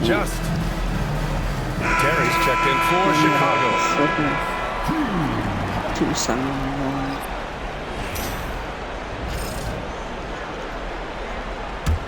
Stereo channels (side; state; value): both; identical; correlation 1.00